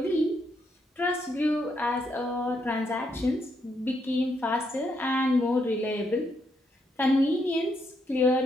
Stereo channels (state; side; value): normal; both; correlation 0.77